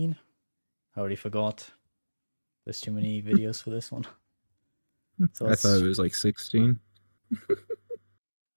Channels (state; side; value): inverted; both; correlation -1.00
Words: I already forgot. There's too many videos for this one. So I thought let's it was like 16.